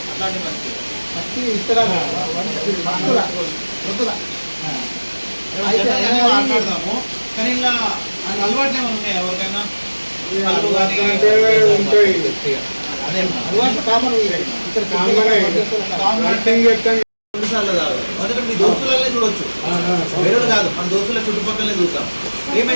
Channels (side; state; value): both; inverted; correlation -1.00